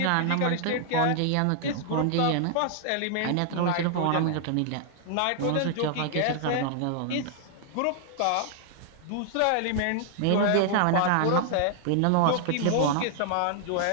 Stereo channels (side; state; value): both; different; correlation 0.00